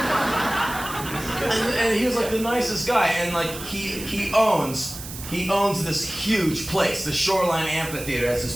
And he was like the nicest guy, and like he owns He owns this huge place. The Shoreline Amphitheater has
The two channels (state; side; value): noise; right; hiss, 11 dB below the sound